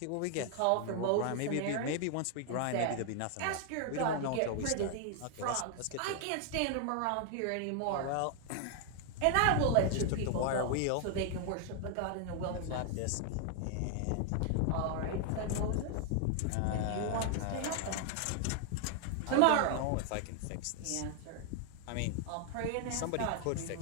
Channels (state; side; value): different; both; correlation 0.00